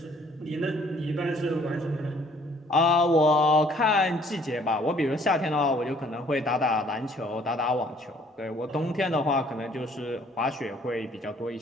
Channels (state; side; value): normal; both; correlation 0.60